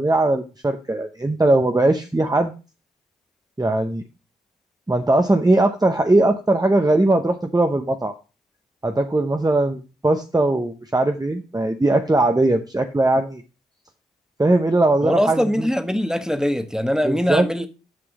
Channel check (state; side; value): normal; both; correlation 0.87